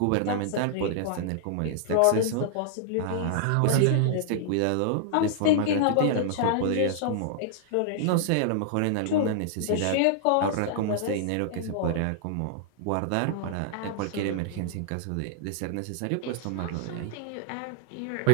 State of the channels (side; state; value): both; different; correlation -0.01